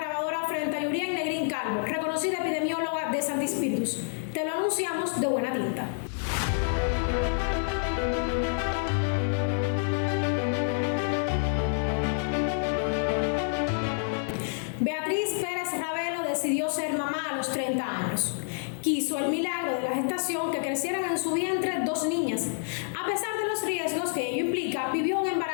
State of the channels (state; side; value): silent; right; 59 dB below the other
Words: frente a Yurien Negrín Calvo, reconocida epidemióloga de Santi Spíritus. Te lo anunciamos de buena tinta. Beatriz Pérez Ravelo decidió ser mamá a los 30 años. Quiso el milagro de la gestación que crecieran en su vientre 2 niñas. A pesar de los riesgos que ello implica, vivió un